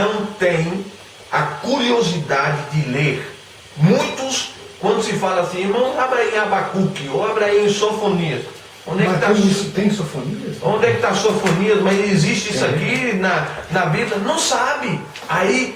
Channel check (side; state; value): both; identical; correlation 1.00